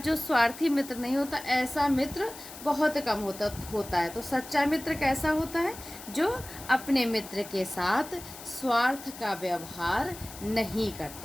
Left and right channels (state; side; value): noise; left; hiss, 14 dB below the sound